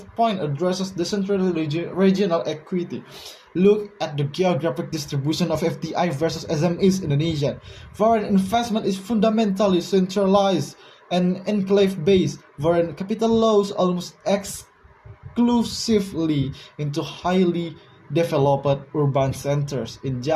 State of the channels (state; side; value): identical; both; correlation 1.00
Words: point addresses decentralized regional equity. Look at the geographic distribution of FDI versus SMEs in Indonesia. Foreign investment is fundamentally centralized and enclave-based. Foreign capital flows almost exclusively into highly developed urban centers. In